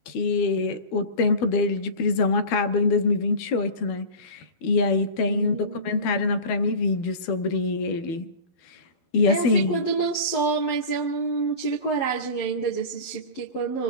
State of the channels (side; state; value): right; late; 12 ms